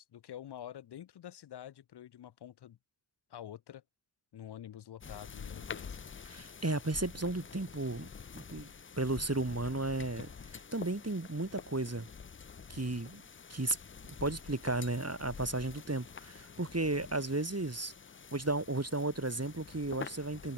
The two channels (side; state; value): both; normal; correlation 0.15